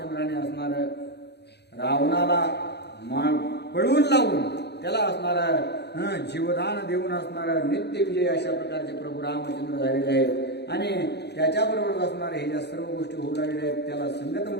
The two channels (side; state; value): right; late; 0.49 ms